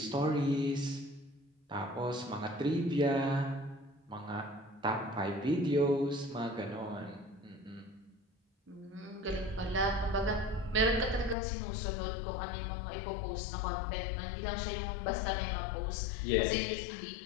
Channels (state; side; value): drops out; right; at 11.4 s